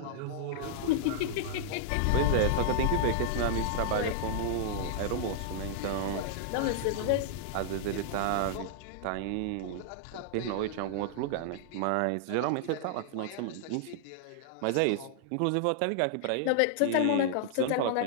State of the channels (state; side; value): different; both; correlation -0.01